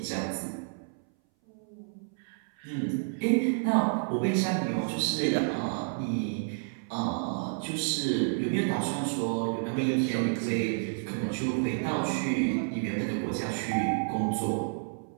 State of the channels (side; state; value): left; silent; 58 dB below the other